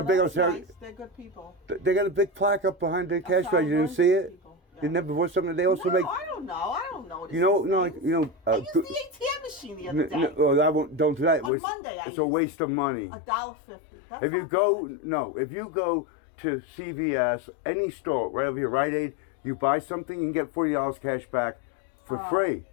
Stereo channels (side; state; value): right; drops out; at 11.5 s